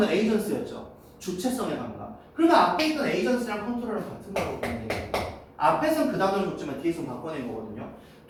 에이전스였죠. 주체성의 감각. 그러면 앞에 있던 에이전스랑 컨트롤은 같은 거라고 보면 돼요. 앞에서는 그 단어를 줬지만 뒤에서 바꿔낸 거거든요.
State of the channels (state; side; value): identical; both; correlation 1.00